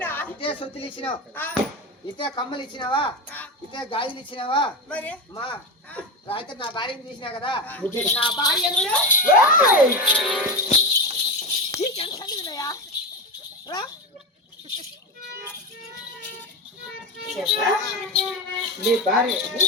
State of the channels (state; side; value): normal; both; correlation 0.19